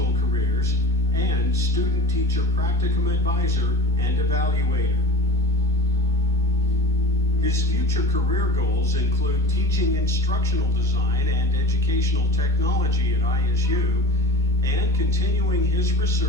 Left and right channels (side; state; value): both; normal; correlation 0.37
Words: careers, and student-teacher practicum advisor and evaluator. His future career goals include teaching instructional design and educational technology at ISU, and continuing his